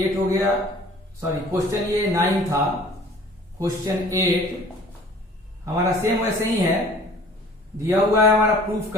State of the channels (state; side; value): normal; both; correlation 0.49